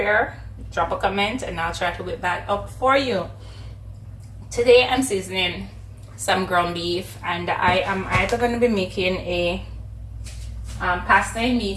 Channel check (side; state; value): both; identical; correlation 1.00